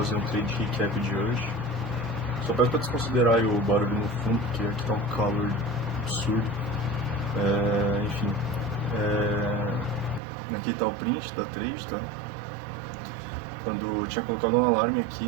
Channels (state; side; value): drops out; left; at 10.2 s